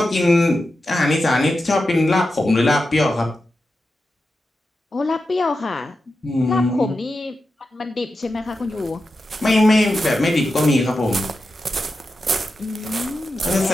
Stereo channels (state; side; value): normal; both; correlation 0.90